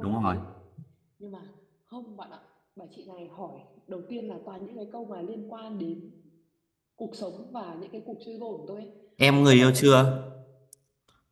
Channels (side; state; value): both; identical; correlation 1.00